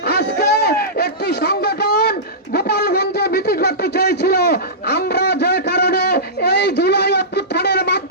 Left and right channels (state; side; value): normal; both; correlation -0.18